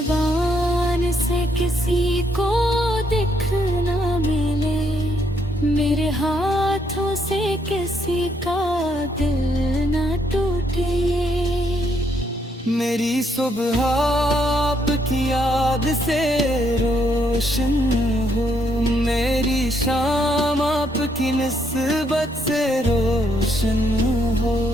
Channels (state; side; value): normal; both; correlation 0.73